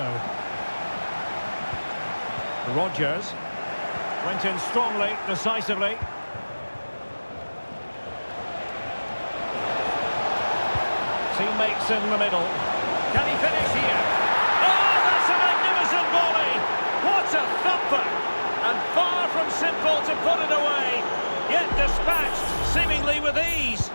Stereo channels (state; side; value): inverted; both; correlation -1.00